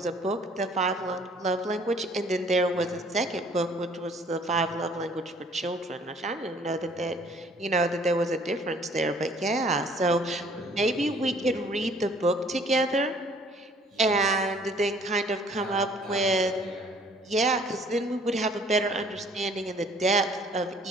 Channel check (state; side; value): normal; both; correlation 0.57